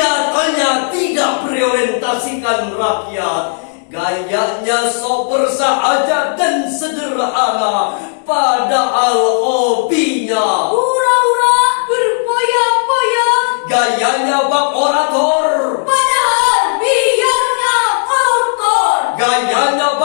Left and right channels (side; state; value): right; silent; digital silence